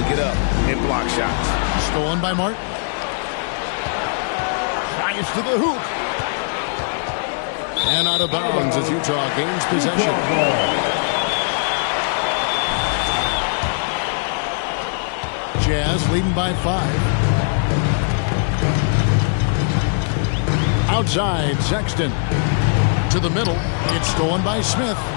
get up and block shots. Stolen by Martin. Drives to the hoop. And out of bounds as Utah gains possession. Jazz leading by 5. Outside, Sexton. To the middle. It's stolen by Smith.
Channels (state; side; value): silent; right; 66 dB below the other